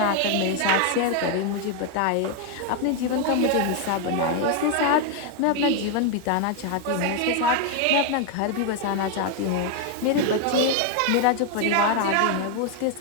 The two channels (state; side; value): different; both; correlation 0.01